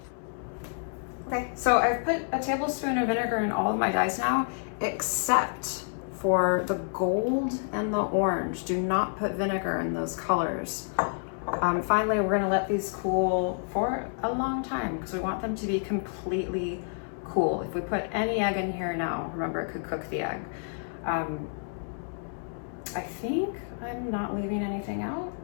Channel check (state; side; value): silent; right; 59 dB below the other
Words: Okay, so I've put a tablespoon of vinegar in all of my dyes now, except for the gold and the orange. Do not put vinegar in those colors. Finally, we're gonna let these cool for a long time because we want them to be completely cool. If we put any egg in here now, remember it could cook the egg. I think I'm not leaving anything out.